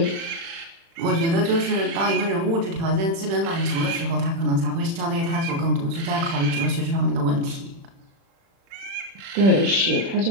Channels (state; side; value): late; left; 36 ms